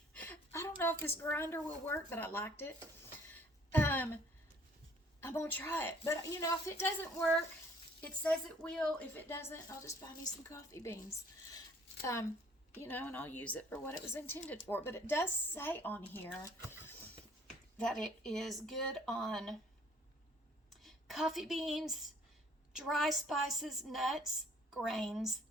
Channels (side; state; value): both; normal; correlation 0.58